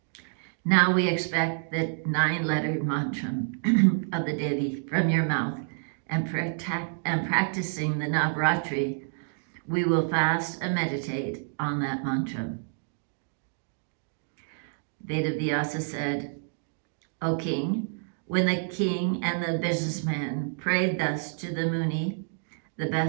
Now we expect the 9-lettered mantra of the Devi from your mouth, and practicing the Navratri, we will fast and meditate on that mantra. Vedavyasa said, O king, when the king and the businessman prayed thus to the Muni, the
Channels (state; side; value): silent; left; digital silence